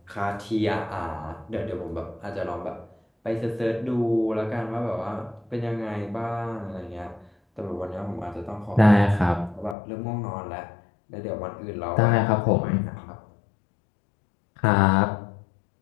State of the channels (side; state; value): right; drops out; at 9.8 s